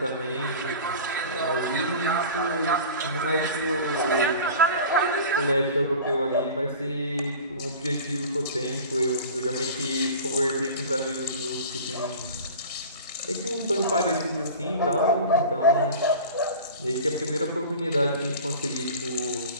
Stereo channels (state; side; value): inverted; both; correlation -0.37